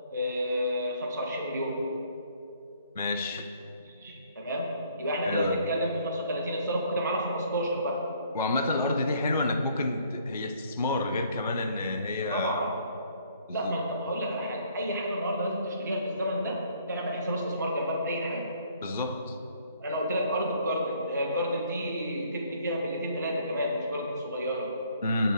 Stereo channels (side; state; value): both; inverted; correlation -0.62